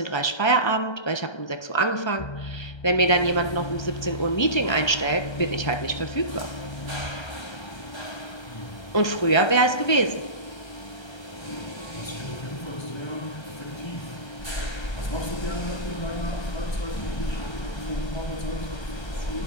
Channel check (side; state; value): right; late; 1.3 ms